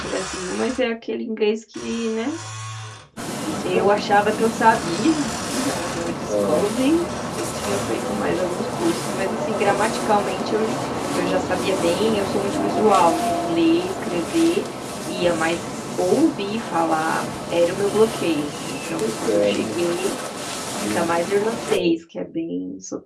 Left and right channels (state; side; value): identical; both; correlation 1.00